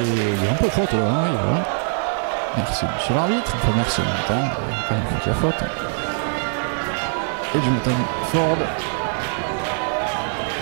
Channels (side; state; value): left; silent; 63 dB below the other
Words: y a un peu de faute là, voilà. Merci monsieur l'arbitre, enfin merci en même temps, il y a quand même qu'il y a faute. Et Jonathan Ford